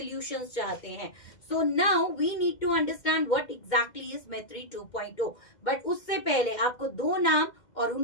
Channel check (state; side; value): late; right; 2.0 ms